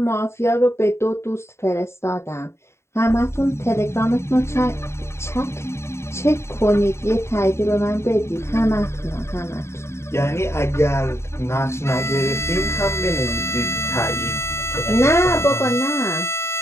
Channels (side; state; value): right; late; 0.13 ms